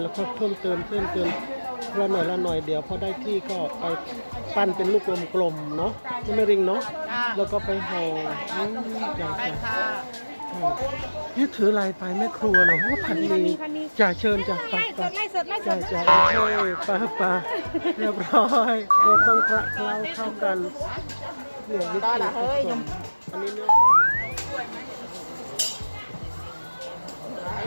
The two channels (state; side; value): inverted; both; correlation -1.00